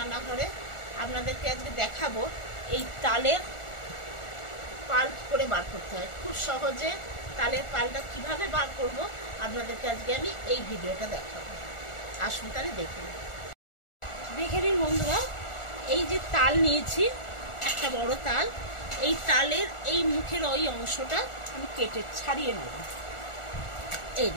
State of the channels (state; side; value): late; right; 1.4 ms